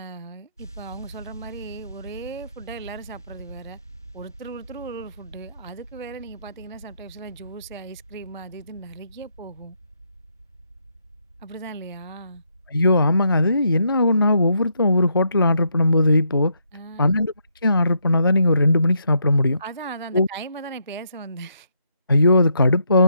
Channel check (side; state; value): both; inverted; correlation -0.76